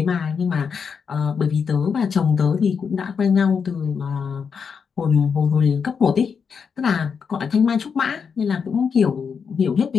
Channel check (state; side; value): quieter; right; 6.2 dB